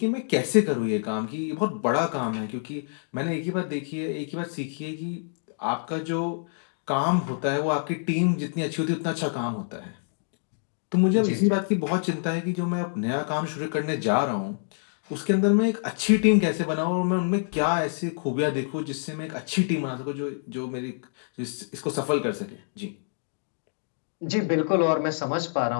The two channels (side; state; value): right; silent; digital silence